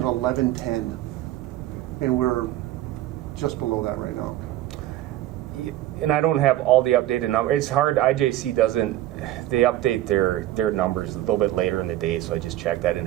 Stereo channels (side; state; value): left; quieter; 14.3 dB